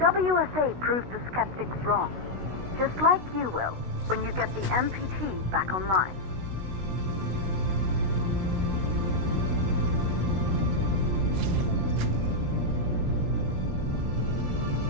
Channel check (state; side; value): late; left; 16 ms